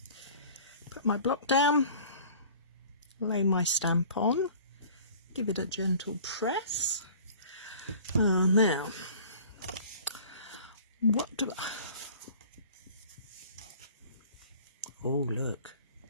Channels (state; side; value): inverted; both; correlation -0.47